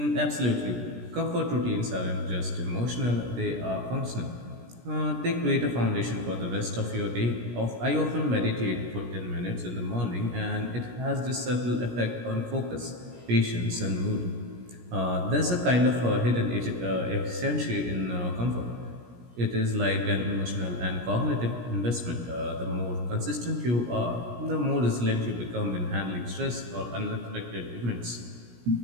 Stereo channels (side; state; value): left; late; 17 ms